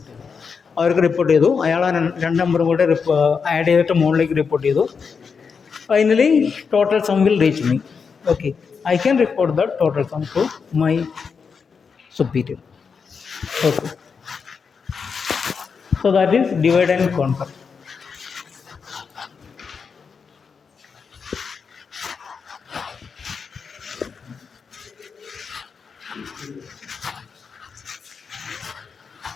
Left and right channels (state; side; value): quieter; right; 5.7 dB